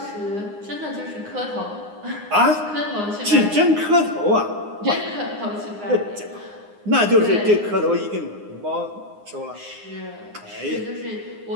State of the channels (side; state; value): left; late; 9.7 ms